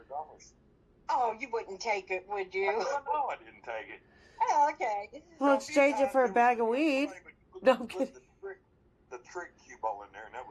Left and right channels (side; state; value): both; identical; correlation 1.00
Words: Oh, you wouldn't take it, would you? No, I didn't take it. Oh, okay. We'll exchange it for a bag of weed. No, I'm kidding. The trick cue ball in there, and that